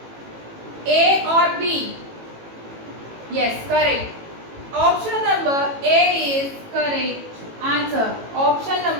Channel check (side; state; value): left; late; 18 ms